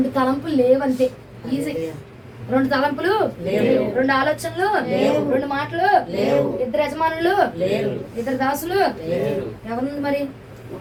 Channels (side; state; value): both; identical; correlation 1.00